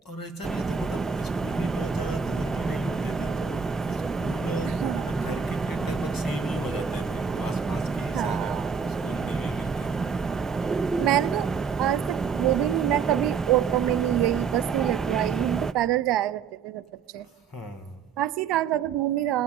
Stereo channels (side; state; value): left; quieter; 6.5 dB